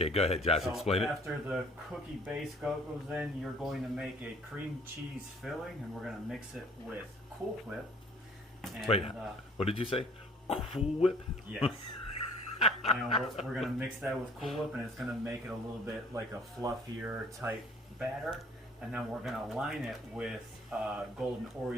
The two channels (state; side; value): normal; both; correlation 0.55